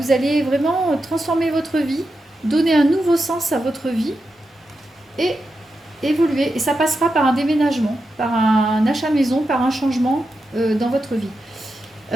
allez vraiment transformer votre vie, donner un nouveau sens à votre vie et évoluer. Et ça passera par un déménagement, par un achat maison, par un changement dans votre vie.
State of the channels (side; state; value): both; normal; correlation 0.88